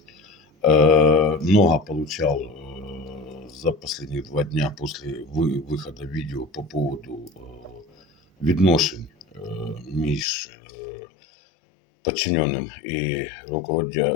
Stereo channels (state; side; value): drops out; right; at 10.2 s